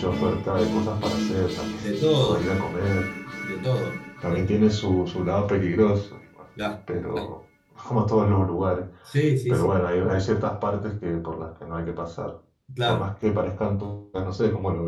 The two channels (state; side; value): identical; both; correlation 1.00